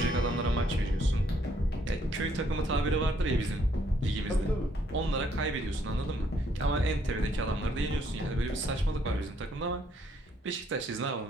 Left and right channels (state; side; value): normal; both; correlation 0.69